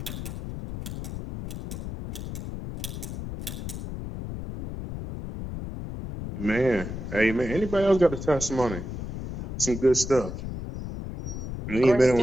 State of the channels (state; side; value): noise; left; rumble, 7 dB below the sound